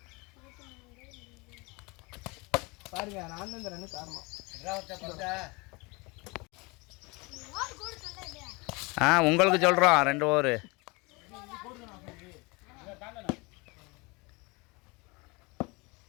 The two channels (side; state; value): right; quieter; 26.8 dB